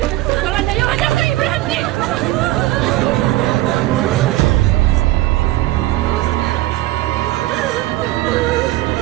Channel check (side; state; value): left; quieter; 16.7 dB